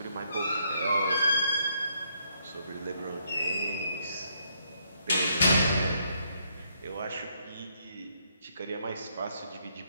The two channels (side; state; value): both; inverted; correlation -0.73